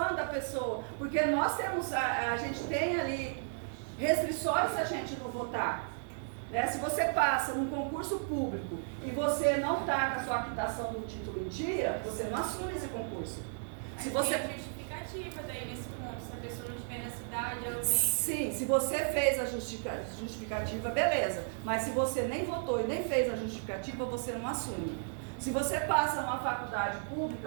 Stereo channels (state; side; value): silent; left; digital silence